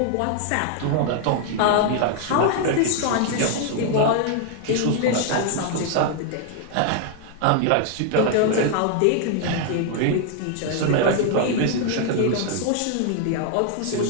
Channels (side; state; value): both; different; correlation 0.00